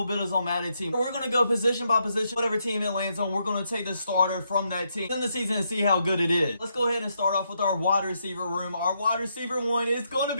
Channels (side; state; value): both; inverted; correlation -0.79